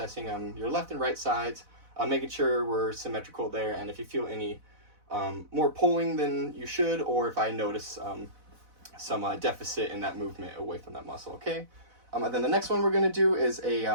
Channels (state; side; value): late; left; 4.0 ms